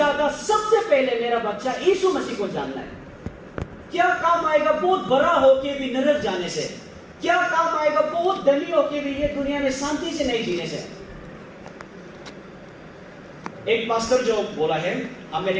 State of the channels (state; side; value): identical; both; correlation 1.00